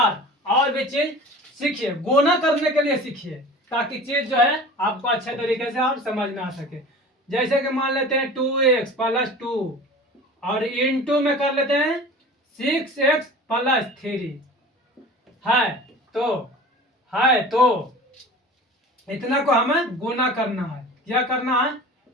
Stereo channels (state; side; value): normal; both; correlation 0.39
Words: और भी चीज सीखिए, गुना करने के लिए सीखिए ताकि चीज जो है आपको अच्छे तरीके से आप समझ में आ सके। जैसे कि मान लेते हैं 2x प्लस 2 और इंटू में कर लेते हैं 6x प्लस 3 है तो इतना को हमें गुना करना है। क्या करना है,